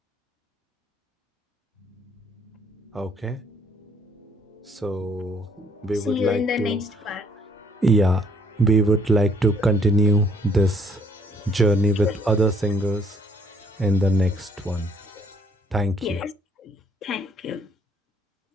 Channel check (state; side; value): normal; both; correlation 0.63